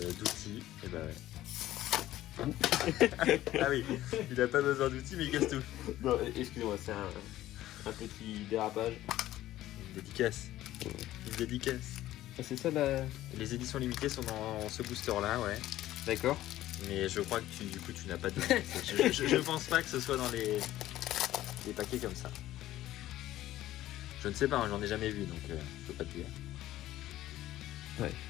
Et bah ouais. Ah oui, il a pas besoin d'outils, mais il casse tout. Non, excusez-moi, c'est un petit dérapage. Une dédicace. Une dédicace. Ah, c'est ça la... Les éditions limitées sont dans ce booster là, ouais. D'accord. Mais je crois que du coup tu n'as pas de... je pense pas que ce soit dans les paquets comme ça. Je ne sais pas, hein, j'en ai jamais vu, donc je peux pas te dire. Ouais,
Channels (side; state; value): right; quieter; 14.5 dB